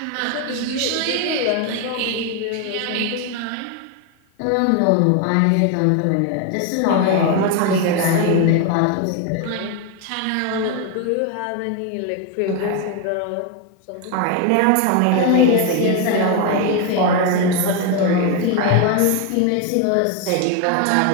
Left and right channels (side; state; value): both; different; correlation 0.01